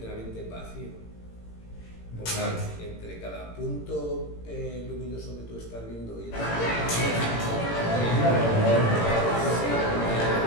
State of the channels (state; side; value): late; right; 18 ms